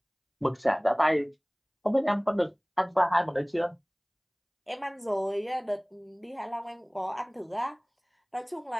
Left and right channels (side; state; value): both; identical; correlation 1.00